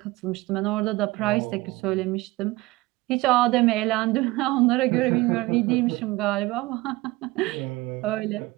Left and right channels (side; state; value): left; quieter; 20.3 dB